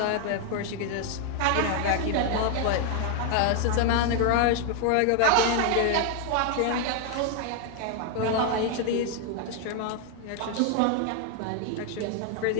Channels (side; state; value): both; different; correlation 0.01